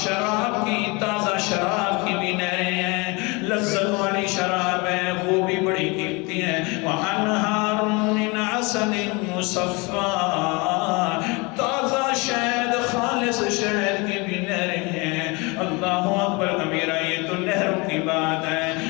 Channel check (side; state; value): right; quieter; 27.5 dB